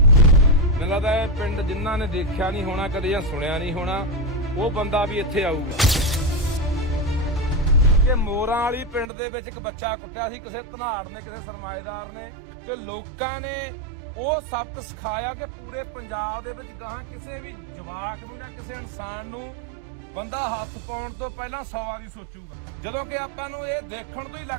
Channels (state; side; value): drops out; left; at 9.1 s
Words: ਲੱਗਦਾ ਇਹ ਪਿੰਡ ਜਿਨ੍ਹਾਂ ਨੇ ਦੇਖਿਆ ਨਹੀਂ ਹੋਣਾ ਕਦੇ ਜਾਂ ਸੁਣਿਆ ਨਹੀਂ ਹੋਣਾ, ਉਹ ਬੰਦਾ ਵੀ ਇੱਥੇ ਆਊਗਾ। ਕਿ ਮੋਰਾਂ ਵਾਲੀ ਪਿੰਡ ਦੇ ਵਿੱਚ ਇੱਕ ਬੱਚਾ ਕੁੱਟਿਆ ਸੀ ਕਿਸੇ ਧਨਾੜ ਨੇ, ਕਿਸੇ ਸਰਮਾਏਦਾਰ ਨੇ, ਤੇ ਲੋਕਾਂ ਨੇ ਉਹ ਸਬਕ ਸਿਖਾਇਆ ਕਿ ਪੂਰੇ ਪੰਜਾਬ ਦੇ ਵਿੱਚ ਗਾਹਾਂ ਕਿਸੇ ਵੀ ਜਵਾਕ ਨੂੰ ਜਾਂ ਕਿਸੇ ਇਨਸਾਨ ਨੂੰ ਬੰਦਾ ਹੱਥ ਪਾਉਣ ਤੋਂ ਪਹਿਲਾਂ 100 ਵਾਰੀ ਸੋਚੂਗਾ। ਜਦੋਂ ਕਿ ਆਪਾਂ ਨੂੰ ਇਹ ਦੇਖਣ ਤੋਂ ਹੀ